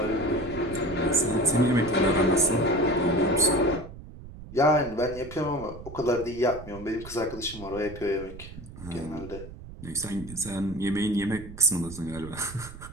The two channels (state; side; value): noise; right; rumble, 14 dB below the sound